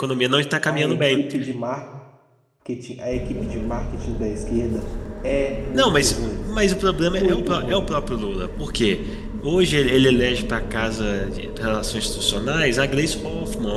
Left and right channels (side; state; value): both; identical; correlation 1.00